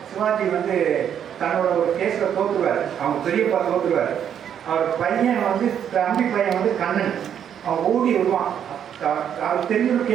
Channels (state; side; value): quieter; left; 9.0 dB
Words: சிவாஜி வந்து தன்னோட ஒரு கேஸில் தோற்றுவார். அவங்க பெரியப்பா தோற்றுவார். அவர் பையன் வந்து தம்பி பையன் வந்து கண்ணன் அவன் ஓடி விடுவான். அவர் தெரிஞ்ச ஒரு